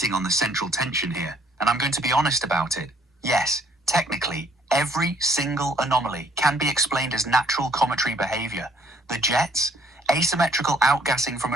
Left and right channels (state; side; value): normal; both; correlation 0.63